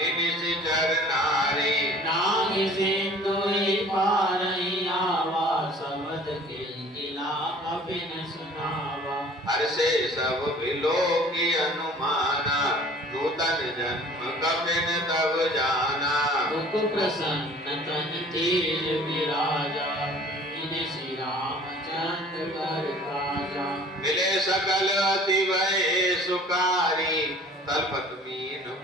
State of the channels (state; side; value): normal; both; correlation 0.49